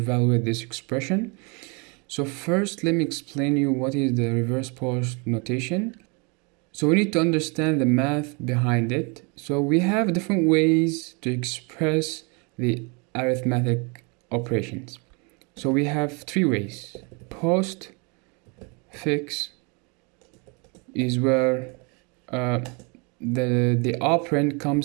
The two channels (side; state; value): left; quieter; 32.2 dB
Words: this expression. So first let me explain you what is the reverse Polish notation. So we need to understand the math behind it. So we have different ways to express the arithmetic operations. So we have three ways: post, fix is where the operand